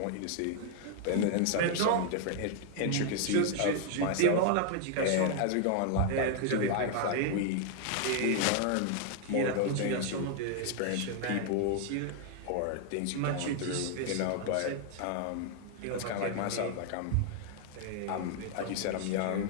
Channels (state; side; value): different; both; correlation 0.00